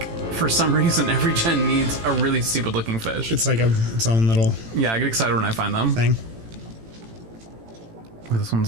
for some reason, every gen needs a really stupid looking fish. It's like its own little Yeah, I get excited when I find them. thing. Oh, this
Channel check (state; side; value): late; left; 18 ms